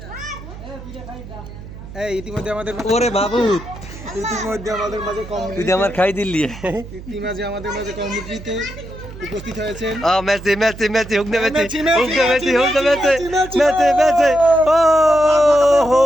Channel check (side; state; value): right; noise; hum, 14 dB below the sound